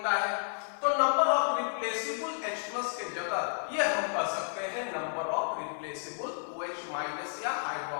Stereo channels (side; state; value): right; silent; digital silence